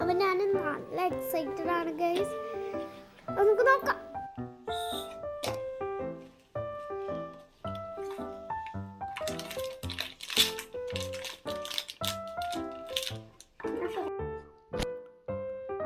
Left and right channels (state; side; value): identical; both; correlation 1.00